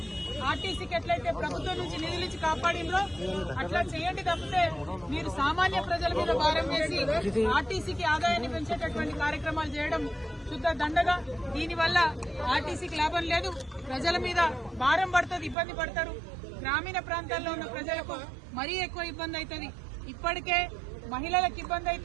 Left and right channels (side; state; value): left; drops out; at 15.6 s